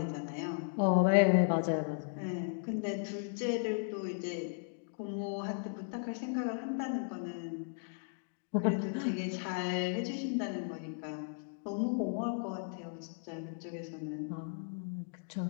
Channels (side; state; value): right; silent; digital silence